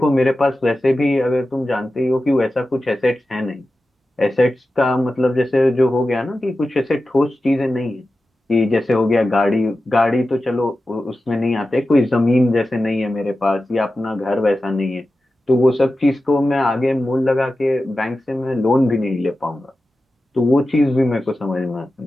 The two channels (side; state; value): both; normal; correlation 0.93